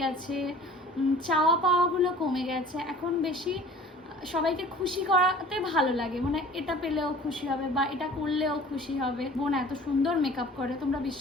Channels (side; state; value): both; normal; correlation 0.46